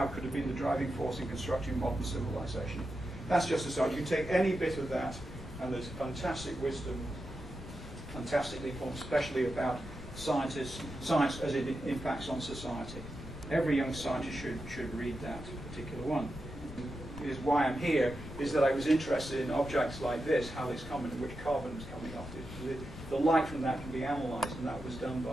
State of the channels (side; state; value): left; noise; rumble, 12 dB below the sound